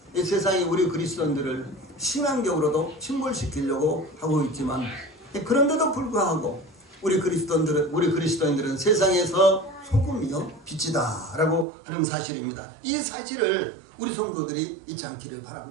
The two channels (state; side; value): drops out; left; at 11.7 s